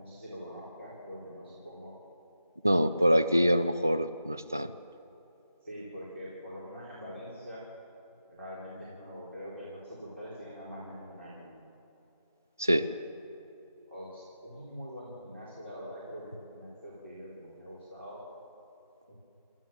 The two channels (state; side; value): inverted; both; correlation -0.90